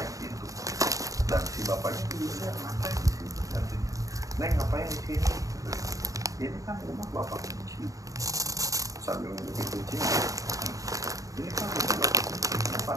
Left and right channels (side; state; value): left; late; 0.16 ms